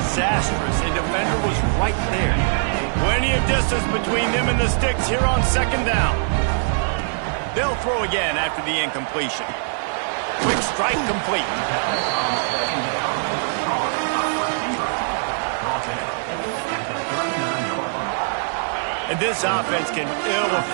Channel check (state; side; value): silent; left; digital silence